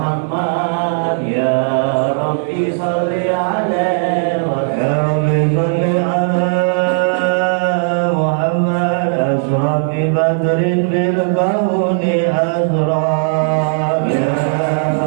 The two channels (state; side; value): silent; left; digital silence